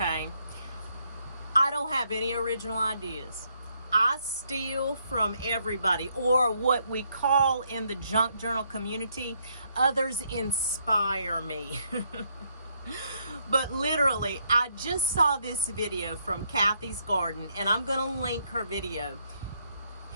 I don't have any original ideas. I steal from everybody, or what we call in the junk journal community, others inspire me. But literally, I just saw this video from Cathy's Garden, and I'm going to link her video.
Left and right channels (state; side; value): inverted; both; correlation -0.74